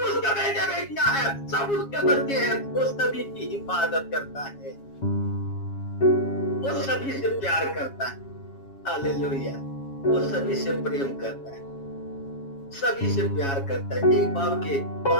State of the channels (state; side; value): late; right; 7.3 ms